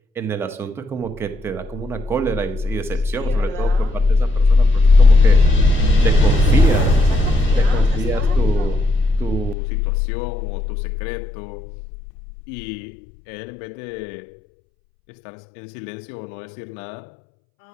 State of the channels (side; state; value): right; drops out; at 9.6 s